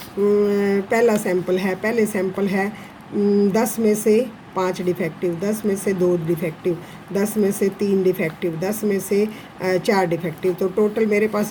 पहला सैंपल है, पहले सैंपल है 10 में से 5 डिफेक्टिव, 10 में से 2 डिफेक्टिव, 10 में से 3 डिफेक्टिव, 10 में से 4 डिफेक्टिव, तो टोटल मेरे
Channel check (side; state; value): both; identical; correlation 1.00